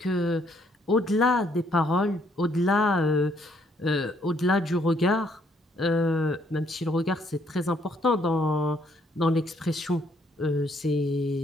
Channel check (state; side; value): normal; both; correlation 0.68